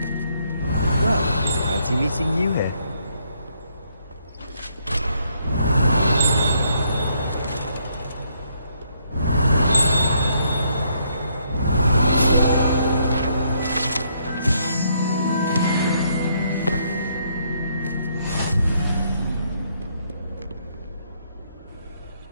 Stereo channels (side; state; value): both; inverted; correlation -0.72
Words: Well, fancy meeting you here.